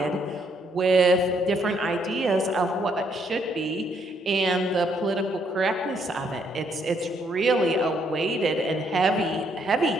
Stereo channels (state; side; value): normal; both; correlation 0.71